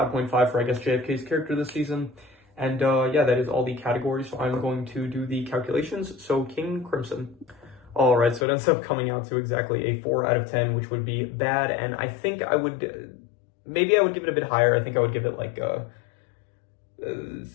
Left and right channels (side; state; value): right; drops out; at 8.5 s